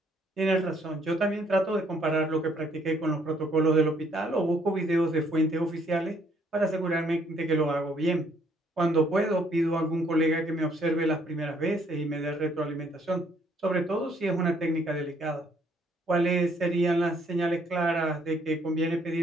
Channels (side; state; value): both; normal; correlation 0.66